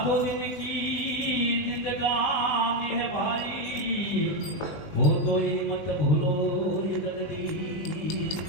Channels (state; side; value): late; right; 20 ms